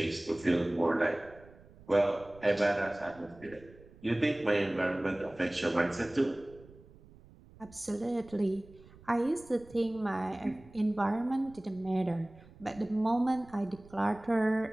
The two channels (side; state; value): right; noise; rumble, 23 dB below the sound